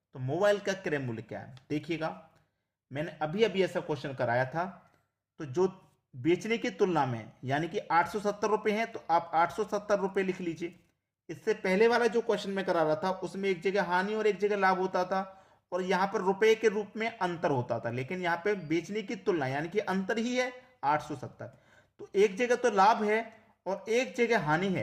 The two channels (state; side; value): identical; both; correlation 1.00